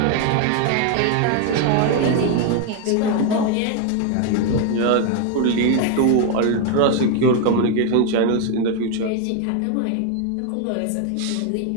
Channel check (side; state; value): both; different; correlation 0.01